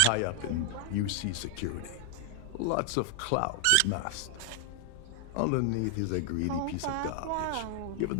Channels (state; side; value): different; both; correlation 0.00